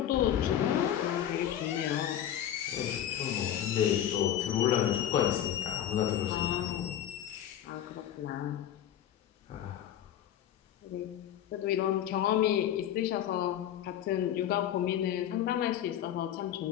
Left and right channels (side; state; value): right; quieter; 10.7 dB